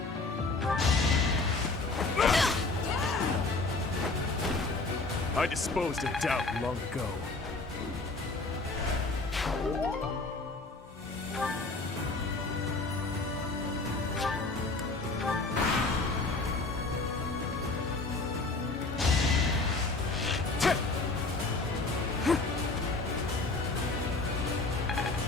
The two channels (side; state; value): right; quieter; 3.4 dB